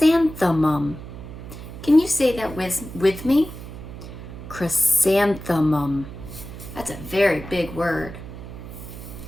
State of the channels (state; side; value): noise; right; hum, 12 dB below the sound